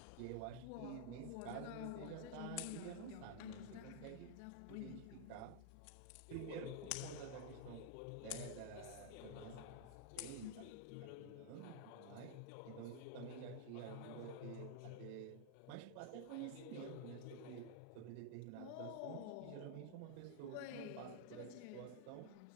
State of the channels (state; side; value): different; both; correlation -0.01